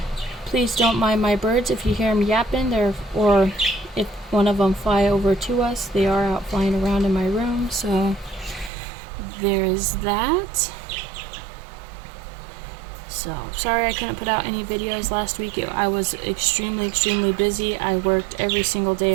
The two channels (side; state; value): left; drops out; at 8.7 s